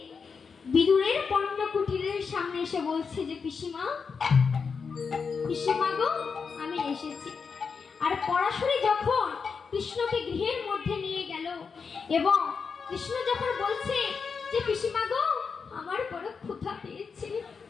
বিদুরের পণ্য কুটিরের সামনে এসে বলছে যে পিসিমা, পিসিমা গো আমি এসেছি। আর পরাশরী যখন কৃষ্ণকে গৃহের মধ্যে নিয়ে গেল এবং কৃষ্ণ যখন বলছে যে পিসিমা গো আমার বড় ক্ষুধা পেয়েছে,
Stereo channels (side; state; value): right; quieter; 5.5 dB